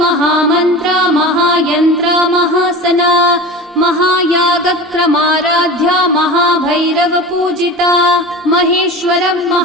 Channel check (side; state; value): both; normal; correlation 0.32